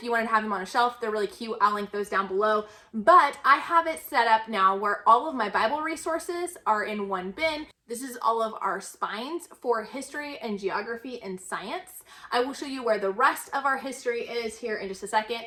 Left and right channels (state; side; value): identical; both; correlation 1.00